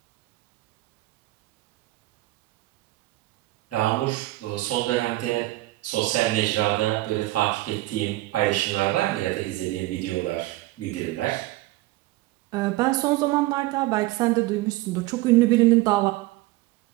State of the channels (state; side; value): quieter; left; 18.3 dB